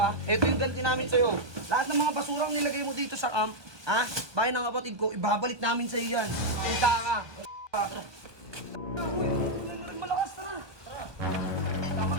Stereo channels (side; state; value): left; late; 1.2 ms